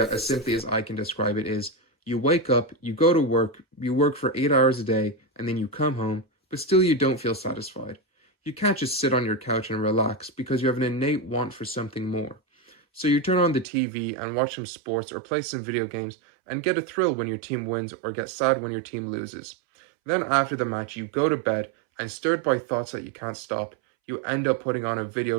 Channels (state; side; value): drops out; left; at 13.7 s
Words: as simply as I can describe it, is you wake up, you go to work, you work for 8 hours a day, and then you come home, but still you don't feel satisfied. You can't just sit on your couch and relax because you have an innate want for something more. So you turn on the TV and watch some sports or play some video games and get a thrill when your team wins or get sad when your team loses. Then after the match, you go to bed and stirred by thoughts that you can't stop, you end up putting on a video